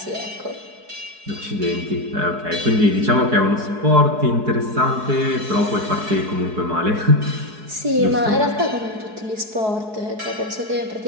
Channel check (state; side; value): late; left; 4.7 ms